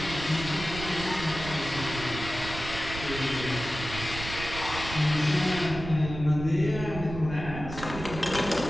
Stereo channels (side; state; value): right; noise; rumble, 9 dB below the sound